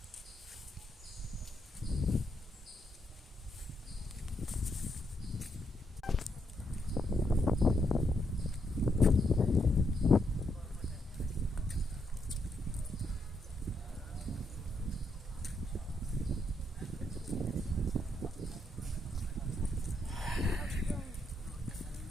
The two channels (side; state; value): both; normal; correlation 0.78